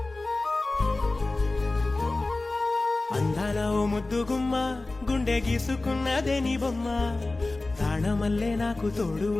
అందాల ఓ ముద్దు గుమ్మ గుండె గీసుకున్నదే నీ బొమ్మ ప్రాణమల్లే నాకు తోడు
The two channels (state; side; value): quieter; right; 3.1 dB